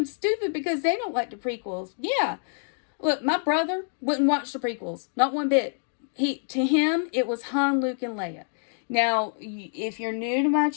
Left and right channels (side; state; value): right; silent; digital silence